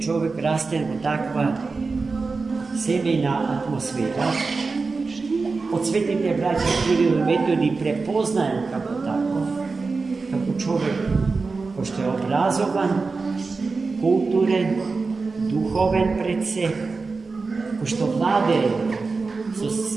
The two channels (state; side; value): quieter; left; 4.2 dB